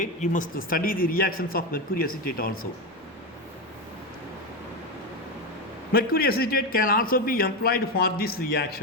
You must study the reactions of mercury acetate also. Mercury acetate can also be employed for this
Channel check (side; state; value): both; normal; correlation 0.14